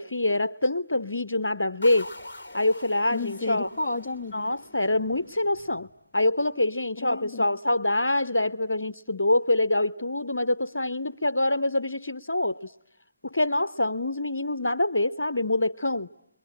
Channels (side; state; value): both; inverted; correlation -0.86